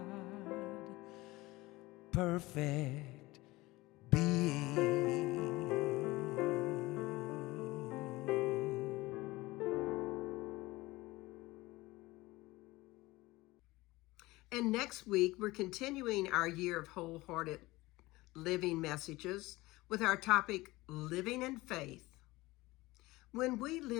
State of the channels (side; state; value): right; quieter; 20.2 dB